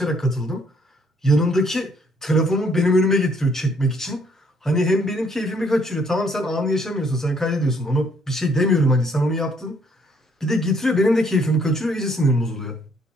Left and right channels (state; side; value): normal; both; correlation 0.66